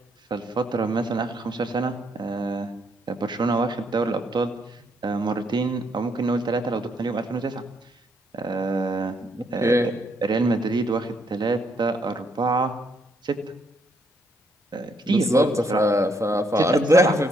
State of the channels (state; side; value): normal; both; correlation 0.72